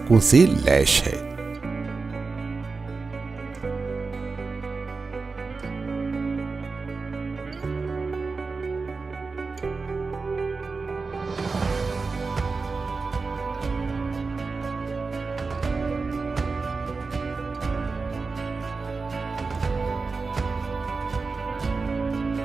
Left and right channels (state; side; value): quieter; left; 4.3 dB